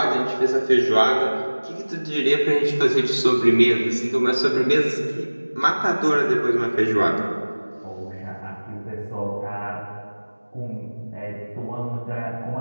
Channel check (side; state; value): both; inverted; correlation -1.00